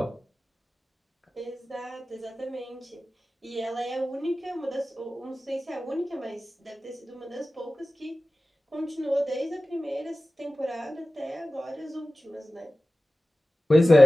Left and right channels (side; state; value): both; normal; correlation 0.96